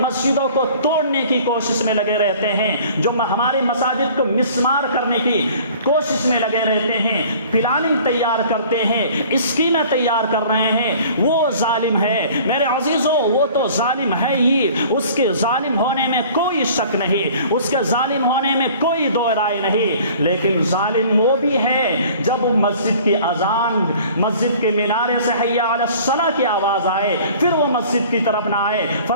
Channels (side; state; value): both; inverted; correlation -0.49